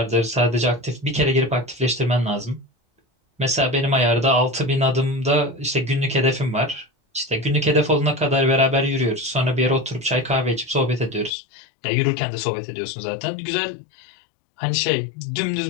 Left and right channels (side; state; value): right; drops out; at 11.3 s